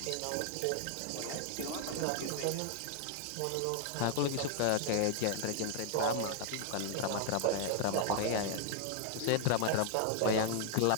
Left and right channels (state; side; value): different; both; correlation 0.00